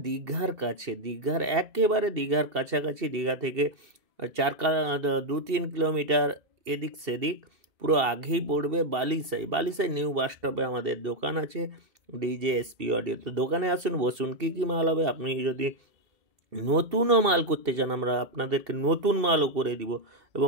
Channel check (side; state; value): left; late; 2.7 ms